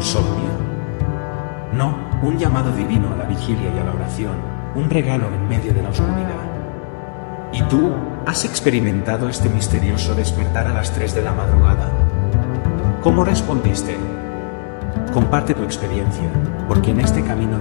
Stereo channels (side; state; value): right; silent; digital silence